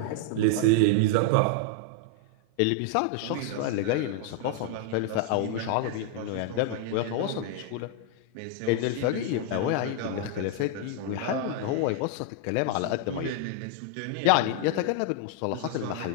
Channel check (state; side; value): different; both; correlation 0.00